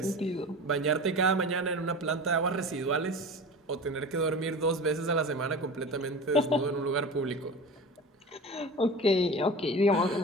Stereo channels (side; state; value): both; normal; correlation 0.33